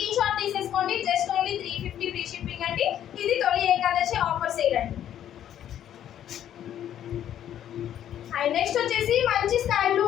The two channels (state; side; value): quieter; right; 10.7 dB